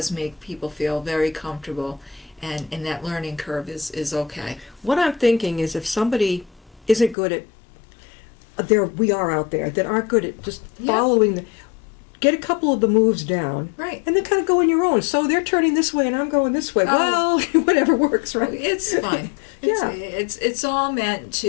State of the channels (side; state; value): right; drops out; at 7.2 s